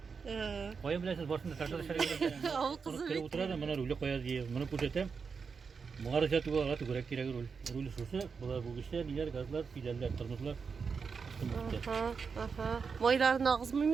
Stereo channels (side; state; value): left; quieter; 5.5 dB